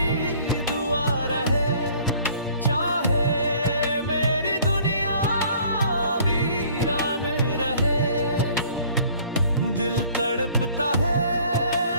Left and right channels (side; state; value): both; inverted; correlation -0.55